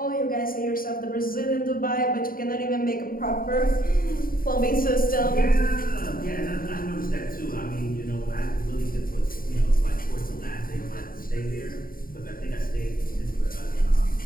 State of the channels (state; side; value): late; right; 0.41 ms